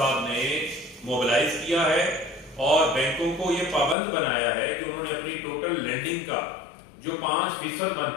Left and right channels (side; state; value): right; drops out; at 4.0 s